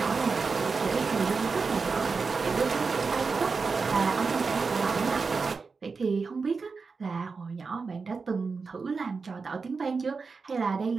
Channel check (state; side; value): quieter; left; 4.7 dB